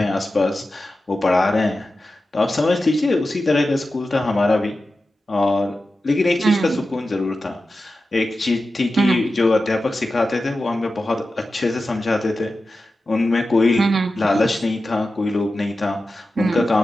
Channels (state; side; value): normal; both; correlation 0.93